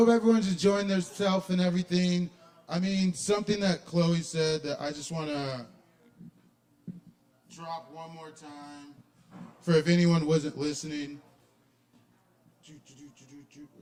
everyone's enjoying themselves and everything. I mean, something that Chloe said that I just want to drop one more time for if anyone wasn't listening.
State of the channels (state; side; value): identical; both; correlation 1.00